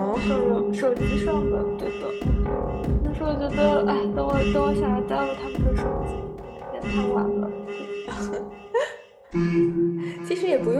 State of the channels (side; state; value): both; identical; correlation 1.00